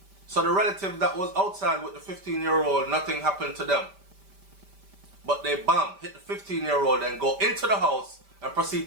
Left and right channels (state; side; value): late; left; 5.1 ms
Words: so the relative that was outside with the 15-year-old, nothing happened to them. But they hit the 15-year-old and go into the house and